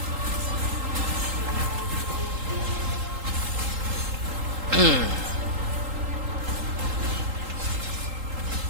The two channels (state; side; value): late; left; 3.8 ms